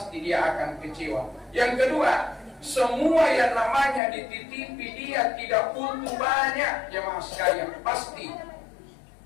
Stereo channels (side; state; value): right; drops out; at 4.0 s